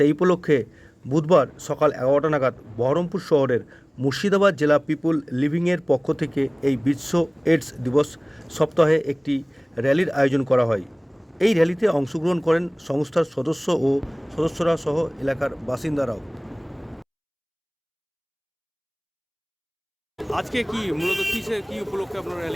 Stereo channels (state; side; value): identical; both; correlation 1.00